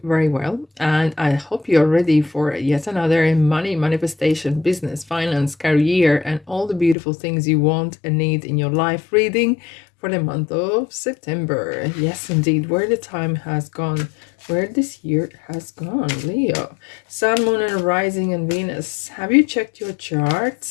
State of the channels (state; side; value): drops out; right; at 7.0 s